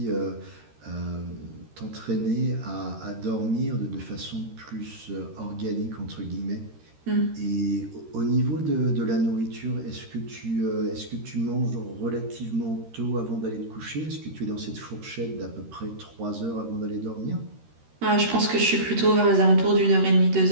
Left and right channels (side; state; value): left; late; 13 ms